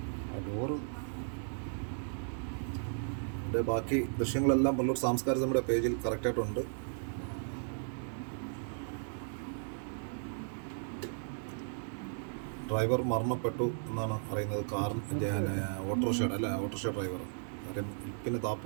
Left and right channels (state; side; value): silent; left; digital silence